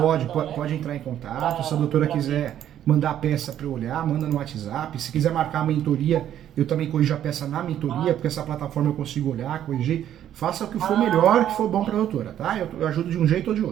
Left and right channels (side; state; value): left; quieter; 10.9 dB